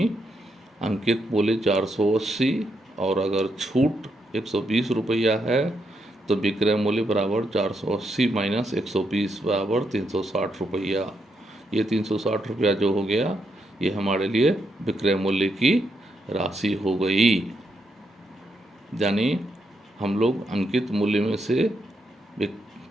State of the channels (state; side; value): normal; both; correlation 0.80